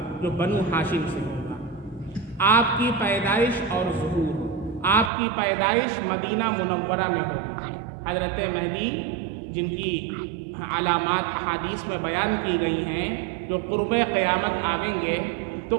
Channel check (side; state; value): left; drops out; at 5.1 s